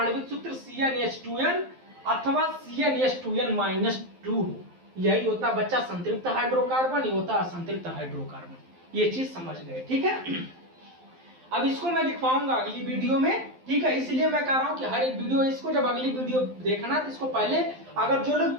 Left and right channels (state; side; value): late; left; 12 ms